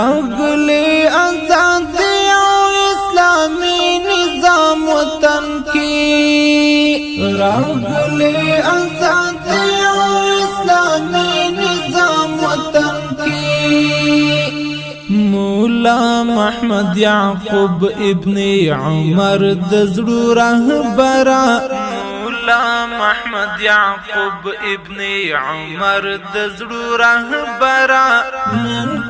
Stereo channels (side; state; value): both; identical; correlation 1.00